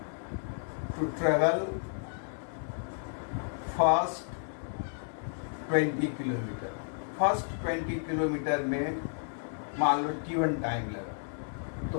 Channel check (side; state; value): right; silent; 56 dB below the other